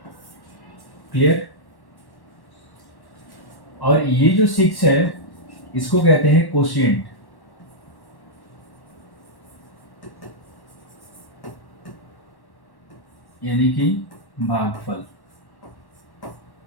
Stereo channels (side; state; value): right; late; 1.1 ms